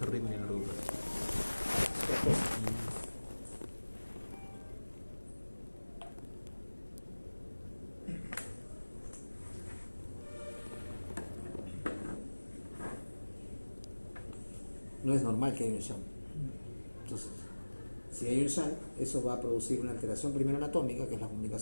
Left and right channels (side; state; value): both; inverted; correlation -1.00